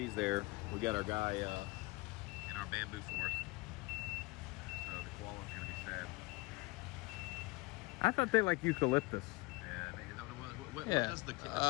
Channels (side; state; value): right; quieter; 24.0 dB